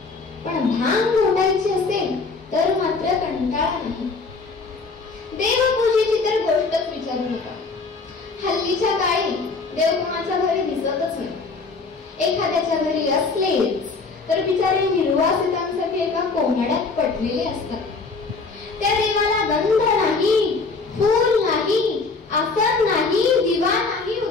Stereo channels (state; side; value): quieter; right; 4.2 dB